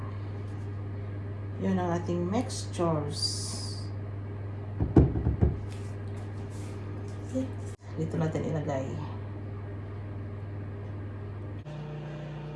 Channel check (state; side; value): identical; both; correlation 1.00